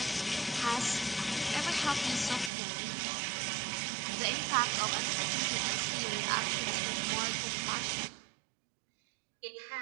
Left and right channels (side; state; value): left; drops out; at 2.5 s